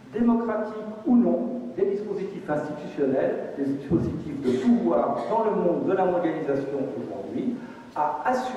démocratiques ou non, des dispositifs institutionnels, des dispositifs de pouvoir dans le monde de la mondialisation aujourd'hui, à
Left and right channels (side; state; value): both; identical; correlation 1.00